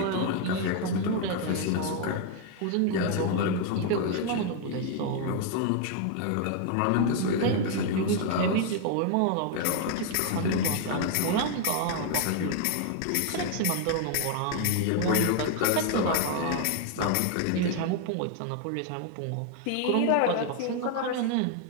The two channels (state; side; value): different; both; correlation 0.00